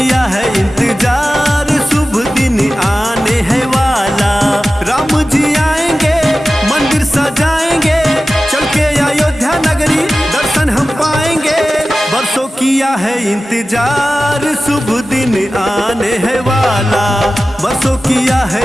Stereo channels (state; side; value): normal; both; correlation 0.95